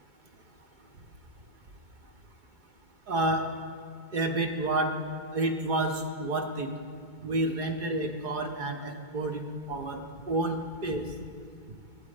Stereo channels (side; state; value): left; late; 2.2 ms